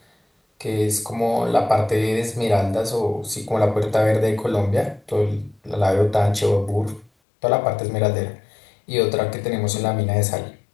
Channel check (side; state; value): right; drops out; at 7.1 s